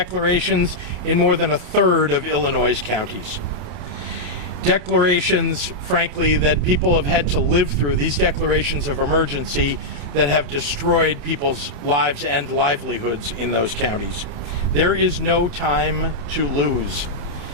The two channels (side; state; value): left; late; 28 ms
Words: in more than a third of Illinois' counties. Declarations, frankly, that people have had to live through, these declarations of emergency that have destroyed people's lives and livelihoods in those counties. There is no time to lose.